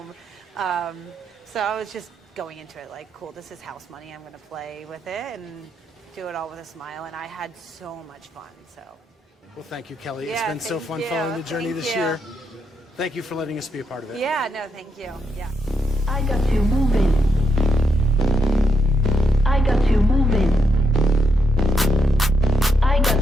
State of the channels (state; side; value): normal; both; correlation 0.80